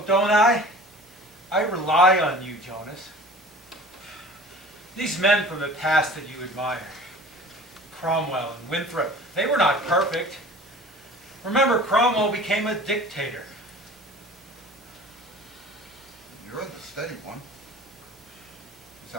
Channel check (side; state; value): both; normal; correlation 0.43